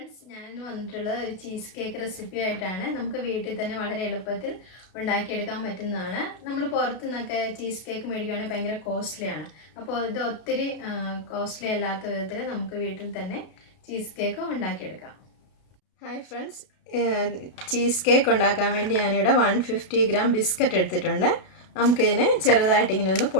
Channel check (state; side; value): late; right; 32 ms